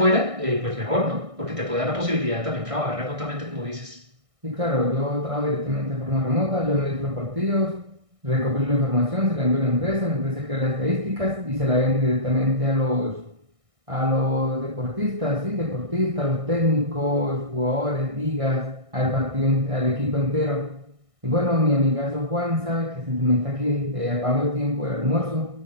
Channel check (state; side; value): late; left; 1.6 ms